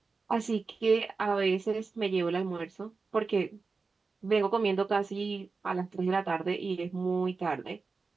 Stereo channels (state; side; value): quieter; left; 4.3 dB